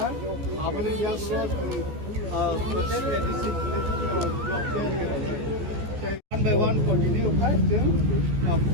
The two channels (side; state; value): left; late; 14 ms